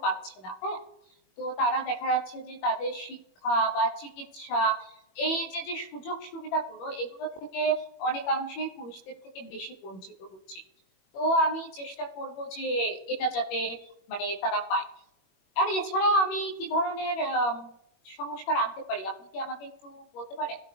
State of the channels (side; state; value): right; late; 21 ms